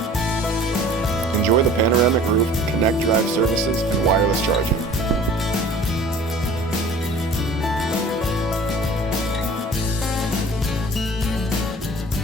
Enjoy the panoramic roof, connect drive services, and wireless charging.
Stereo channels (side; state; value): both; normal; correlation 0.47